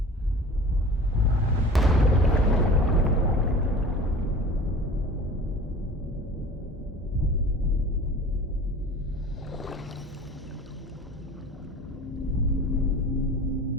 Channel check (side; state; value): both; normal; correlation 0.40